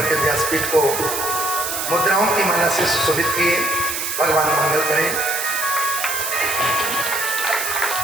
के व्यासपीठ को मुद्राओं की माला से सुशोभित किए। भगवान मंगल करें।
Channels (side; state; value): right; noise; hiss, 3 dB below the sound